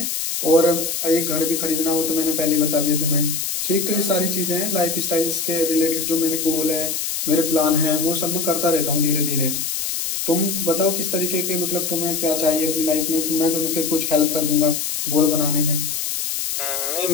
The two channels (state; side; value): noise; left; hiss, 2 dB below the sound